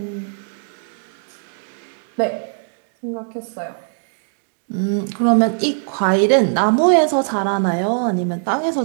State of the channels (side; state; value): left; silent; digital silence